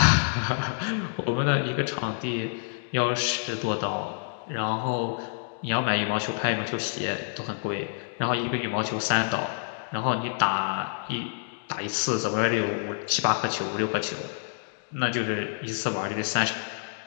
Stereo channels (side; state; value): right; silent; digital silence